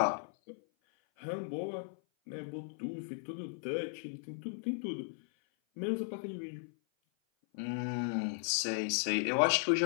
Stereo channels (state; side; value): silent; right; 54 dB below the other